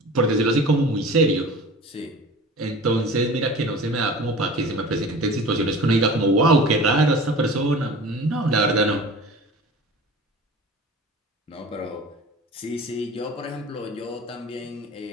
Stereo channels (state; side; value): normal; both; correlation 0.39